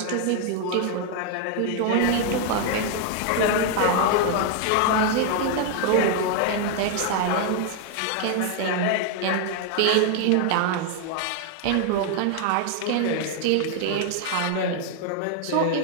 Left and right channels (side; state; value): both; different; correlation 0.00